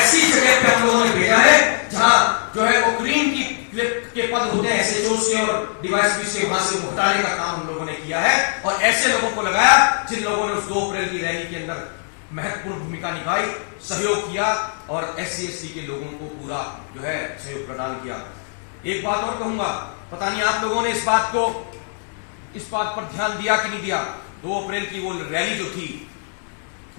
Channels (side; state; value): right; silent; 64 dB below the other